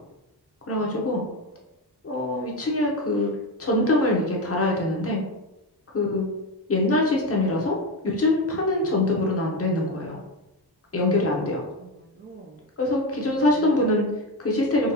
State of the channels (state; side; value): normal; both; correlation 0.16